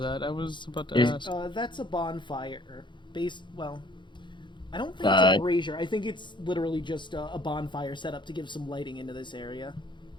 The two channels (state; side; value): late; right; 0.23 ms